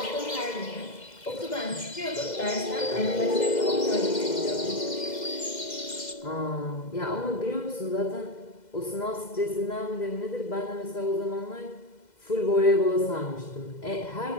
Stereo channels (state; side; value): late; right; 2.0 ms